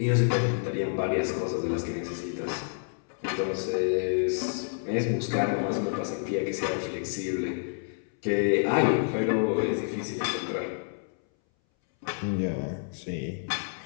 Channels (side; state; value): right; silent; 59 dB below the other